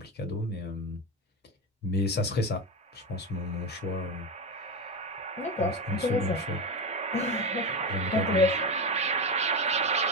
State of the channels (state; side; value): normal; both; correlation 0.16